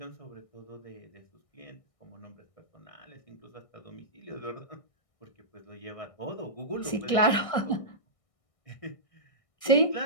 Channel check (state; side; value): late; right; 1.6 ms